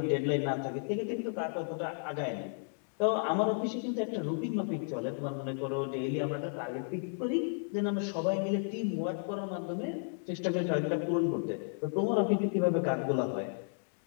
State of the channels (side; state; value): right; silent; digital silence